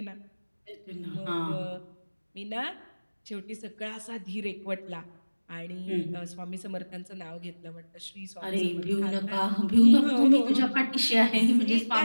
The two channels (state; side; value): inverted; both; correlation -1.00